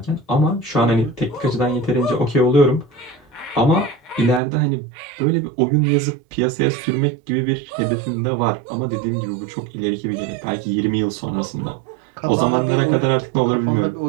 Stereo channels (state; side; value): drops out; left; at 4.4 s